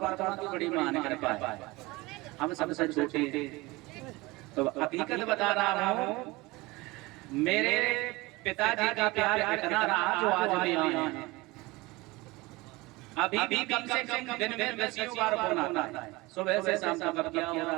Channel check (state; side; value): quieter; left; 22.4 dB